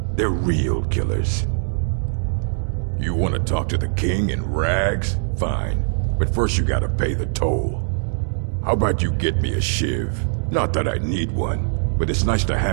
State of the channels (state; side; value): silent; left; digital silence